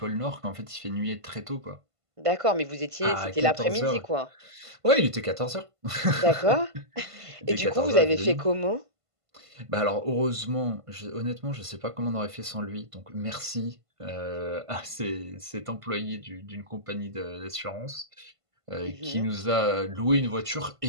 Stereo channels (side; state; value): left; late; 1.5 ms